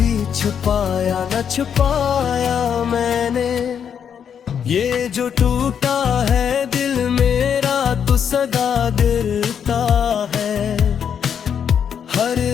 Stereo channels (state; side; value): quieter; right; 7.9 dB